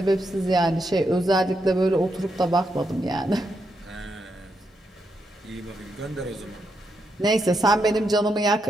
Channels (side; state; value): both; normal; correlation 0.82